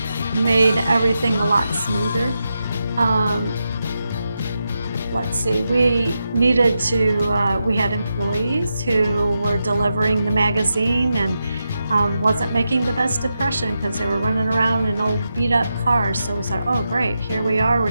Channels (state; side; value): inverted; both; correlation -0.87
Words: made everything a lot smoother. Let's see, we needed to, we had employees who were delivering the magazine and wasn't making the best impression because they were running around in old beat up cars. So we said, oh great, here we are, we're